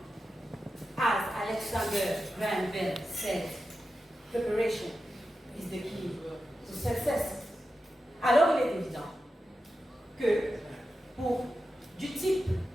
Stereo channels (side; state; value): both; normal; correlation 0.91